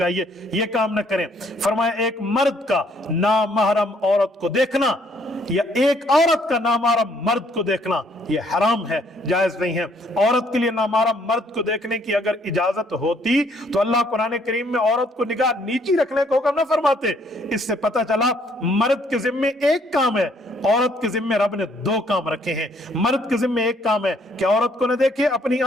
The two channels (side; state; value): both; normal; correlation 0.66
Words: یہ کام نہ کریں۔ فرمایا ایک مرد کا نامحرم عورت کو دیکھنا یا ایک عورت کا نامحرم مرد کو دیکھنا یہ حرام ہے، جائز نہیں ہے۔ عورت کے لیے نامحرم مرد کو دیکھنے کی اگر اجازت ہوتی تو اللہ قرآن کریم میں عورت کو نگاہ نیچی رکھنے کو حکم نہ فرماتے۔ اس سے پتہ چلا مرد کے ذمے ایک کام ہے، عورت کے ذمے رب نے 2 کام رکھے ہیں۔ مرد کے ذمے ایک کام ہے کہ عورت کو نہ دیکھے، اپنی